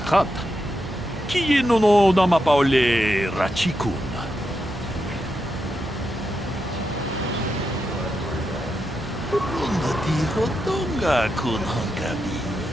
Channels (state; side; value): normal; both; correlation 0.85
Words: Kieno no namapaole rachikun. Runga tiho donga kun hongabi.